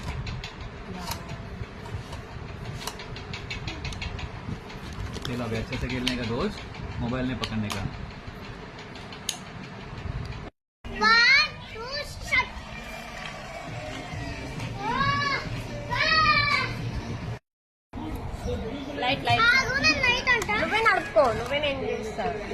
खेलो अभी अच्छे से खेलने का, रोज मोबाइल नहीं पकड़ने का. లైట్ లైట్ నువ్వే నడుపుకో, నువ్వే నేను చేస్తా.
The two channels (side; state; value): both; identical; correlation 1.00